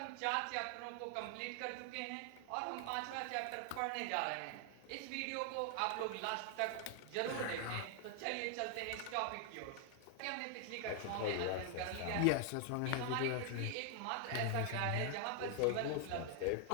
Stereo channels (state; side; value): different; both; correlation 0.00